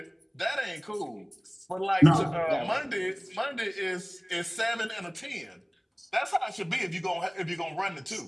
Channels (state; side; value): identical; both; correlation 1.00